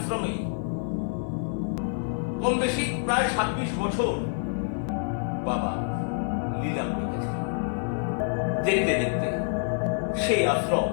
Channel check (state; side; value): silent; right; digital silence